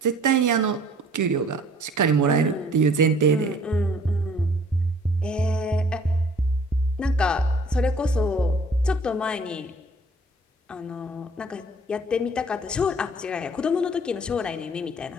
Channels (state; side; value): normal; both; correlation 0.55